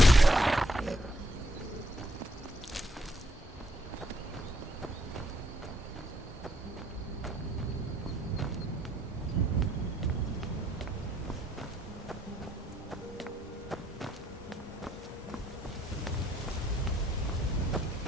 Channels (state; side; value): normal; both; correlation 0.72